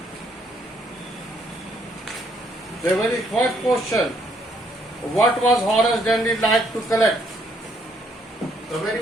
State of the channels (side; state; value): both; normal; correlation 0.70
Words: The very first question, what was Horace Dandy like to collect? The very